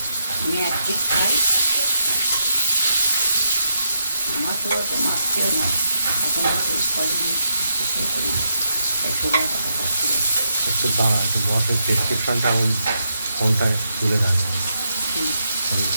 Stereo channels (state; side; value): inverted; both; correlation -0.82